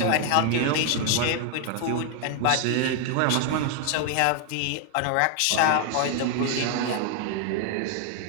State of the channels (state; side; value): different; both; correlation 0.00